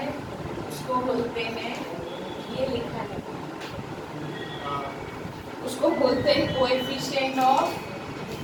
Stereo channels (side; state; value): both; identical; correlation 1.00